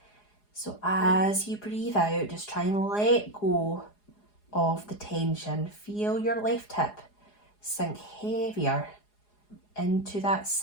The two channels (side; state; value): right; late; 4.8 ms